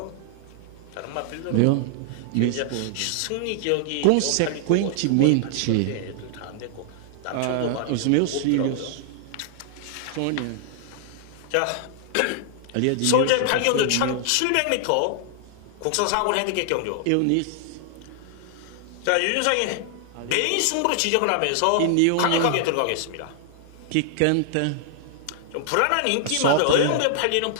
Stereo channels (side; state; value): both; different; correlation -0.01